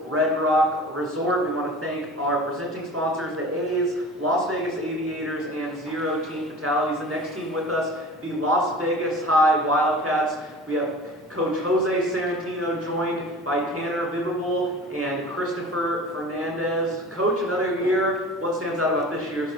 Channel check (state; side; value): normal; both; correlation 0.39